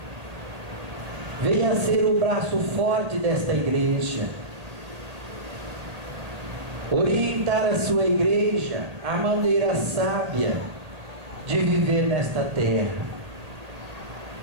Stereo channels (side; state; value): left; late; 1.8 ms